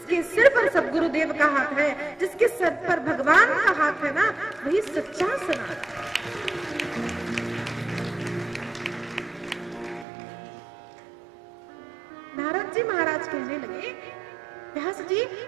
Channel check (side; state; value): left; drops out; at 10.1 s